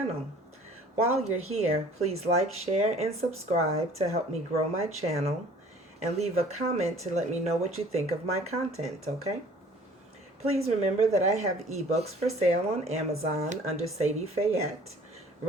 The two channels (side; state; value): both; normal; correlation 0.51